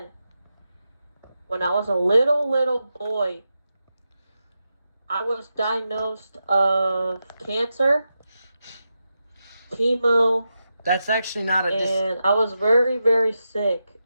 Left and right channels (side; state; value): both; inverted; correlation -0.88